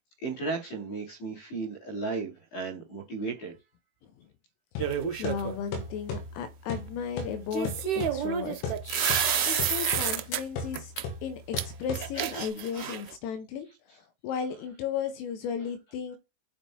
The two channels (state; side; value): late; right; 18 ms